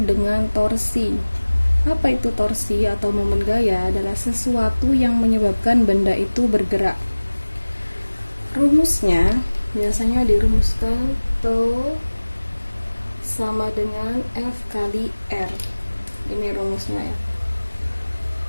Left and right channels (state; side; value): inverted; both; correlation -1.00